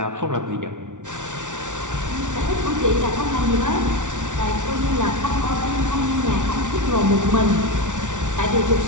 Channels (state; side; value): late; left; 0.87 ms